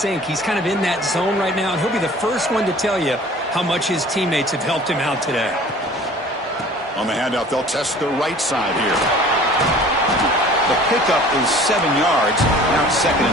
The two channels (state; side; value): normal; both; correlation 0.47